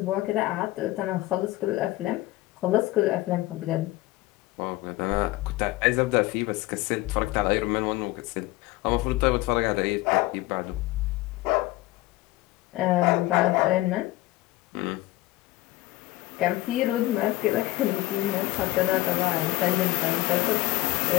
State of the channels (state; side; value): quieter; right; 18.5 dB